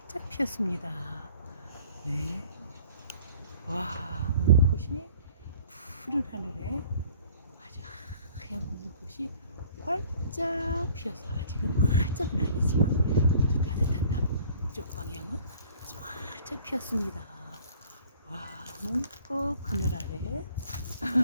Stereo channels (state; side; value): inverted; both; correlation -0.52